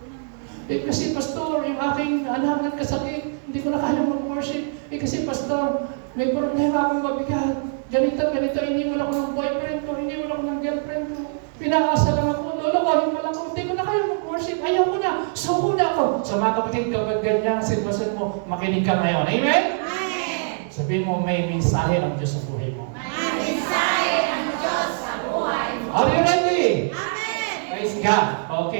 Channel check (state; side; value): silent; left; digital silence